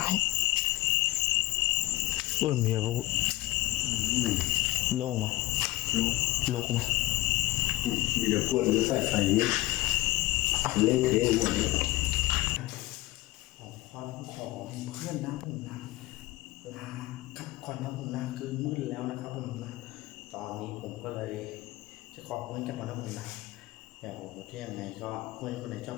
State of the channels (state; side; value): quieter; right; 18.5 dB